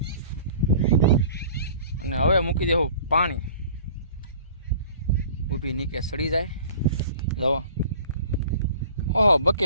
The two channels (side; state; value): both; inverted; correlation -0.46